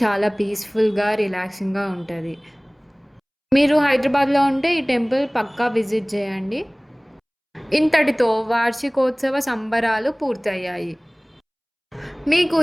చాలా పీస్ఫుల్గా రిలాక్సింగ్గా ఉంటుంది. మీరు హైదరాబాద్లో ఉంటే ఈ టెంపుల్ పక్కా విజిట్ చేయండి. ఇంతటితో వార్షికోత్సవ సంబరాలు పూర్తయ్యాయి. మీకు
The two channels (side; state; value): both; identical; correlation 1.00